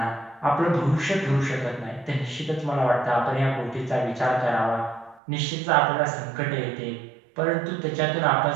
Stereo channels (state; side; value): drops out; left; at 5.2 s